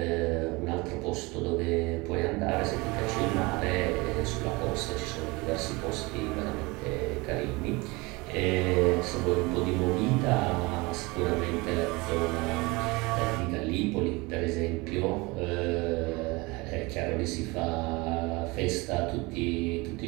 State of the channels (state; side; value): quieter; left; 24.5 dB